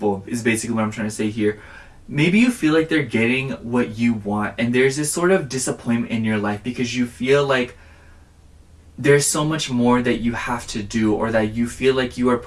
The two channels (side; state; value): both; identical; correlation 1.00